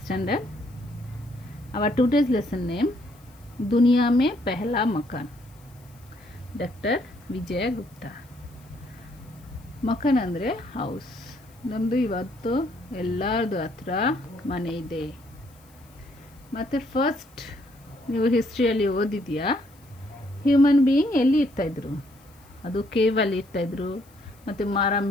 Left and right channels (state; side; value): noise; left; hiss, 29 dB below the sound